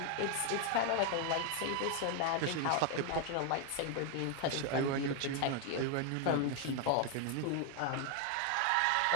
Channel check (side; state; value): both; different; correlation 0.00